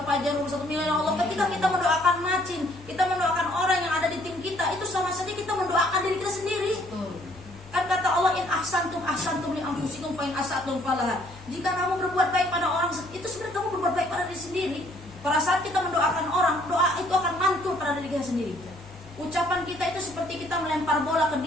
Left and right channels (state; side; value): normal; both; correlation 0.63